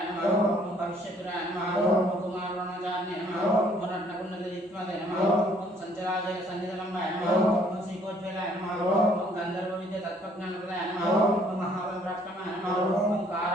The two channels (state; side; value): normal; both; correlation 0.62